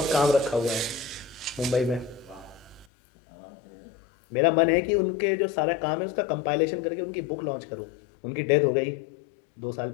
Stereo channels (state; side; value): drops out; right; at 2.9 s